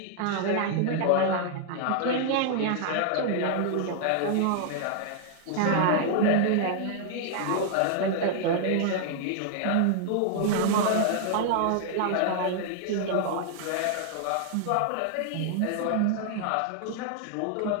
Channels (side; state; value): both; different; correlation -0.01